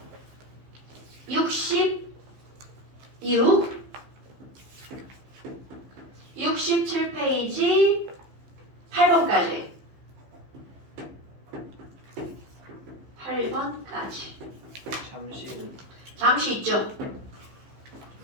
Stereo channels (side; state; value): left; late; 15 ms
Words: 66 67페이지 8번까지 8번까지 잠시 있죠?